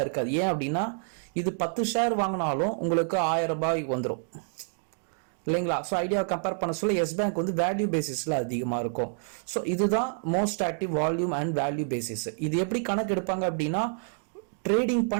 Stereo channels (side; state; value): left; silent; digital silence